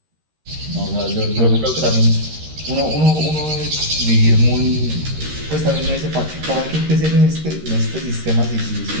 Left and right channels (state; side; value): late; left; 13 ms